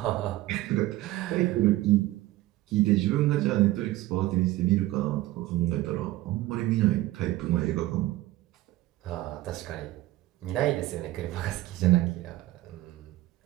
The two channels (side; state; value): left; quieter; 16.9 dB